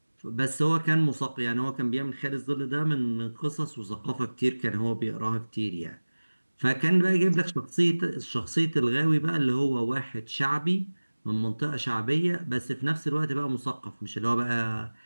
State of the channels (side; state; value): both; inverted; correlation -1.00